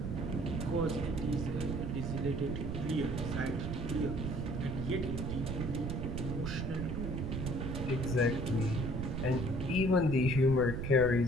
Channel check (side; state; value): right; noise; rumble, 3 dB below the sound